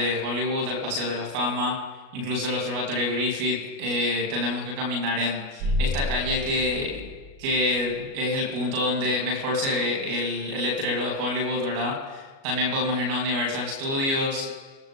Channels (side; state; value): left; late; 37 ms